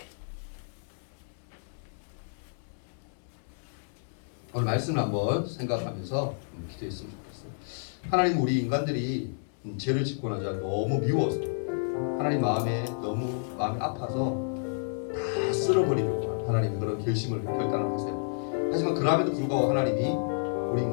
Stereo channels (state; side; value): silent; right; digital silence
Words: 오늘 말씀을 한번 생각하면서 기도했으면 좋겠어요. 하나님 우리 인간들이 죄를 짓고 나자 너무 미워서 하나님 너무 마음이 아파서 다 쓸어버리려고 하나님 그런 결단을 하세요. 하지만 그럼에도 불구하고 하나님이 우리